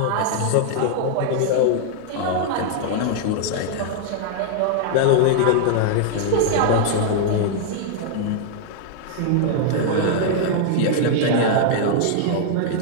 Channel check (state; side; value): different; both; correlation -0.01